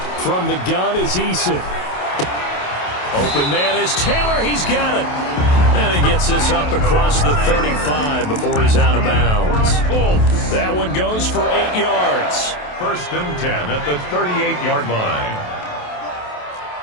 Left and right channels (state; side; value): late; right; 28 ms